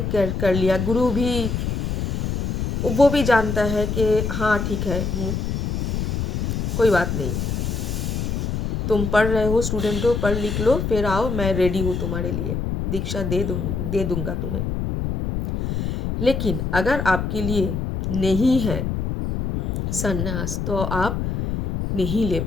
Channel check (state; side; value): noise; left; rumble, 2 dB below the sound